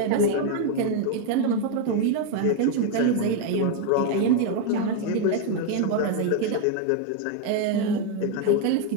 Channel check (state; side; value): different; both; correlation 0.01